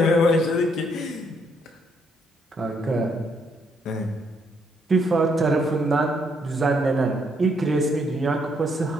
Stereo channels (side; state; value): both; normal; correlation 0.72